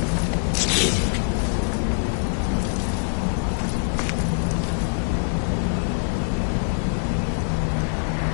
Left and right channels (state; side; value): silent; right; digital silence